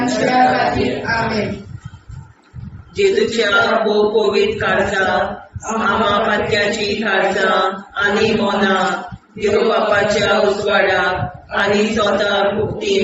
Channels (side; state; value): both; identical; correlation 1.00